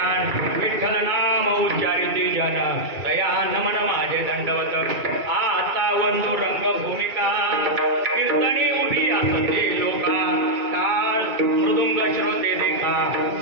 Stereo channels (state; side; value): late; left; 2.2 ms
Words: विठ्ठल नाम उच्चारिती जन दया नमन माझे दंडवत आता बंधू रंगभूमिका कीर्तनी उभी असते लोका टाळ मृदुंग श्रोते देखा